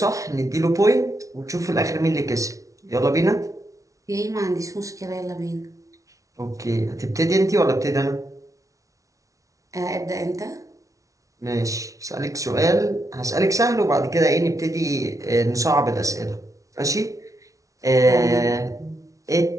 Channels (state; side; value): late; left; 0.16 ms